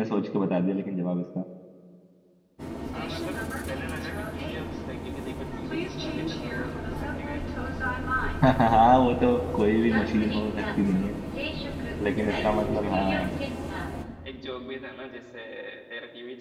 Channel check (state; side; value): identical; both; correlation 1.00